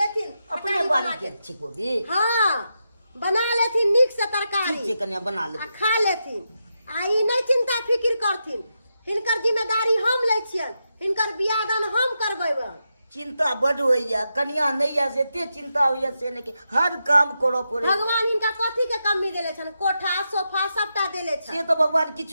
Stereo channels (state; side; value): inverted; both; correlation -0.86